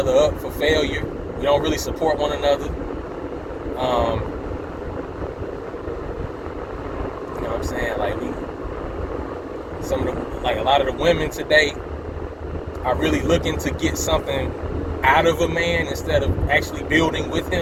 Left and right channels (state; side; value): identical; both; correlation 1.00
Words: up for failure. We don't really support one another. You know what I'm saying? Like a lot of the women today are really looking to get something out of a man instead of actually building with